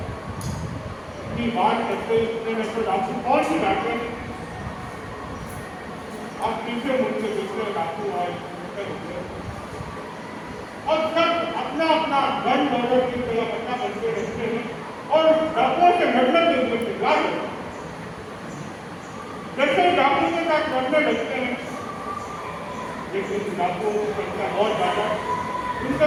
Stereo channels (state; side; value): identical; both; correlation 1.00